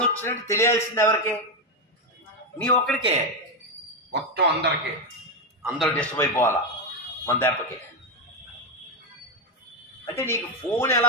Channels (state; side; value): normal; both; correlation 0.07